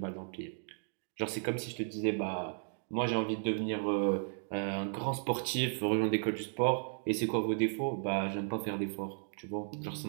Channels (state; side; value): silent; left; digital silence